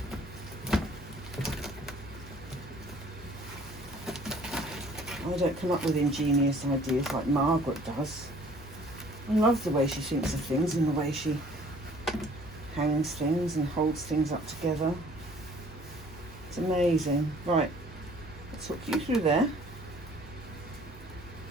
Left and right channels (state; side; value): normal; both; correlation 0.55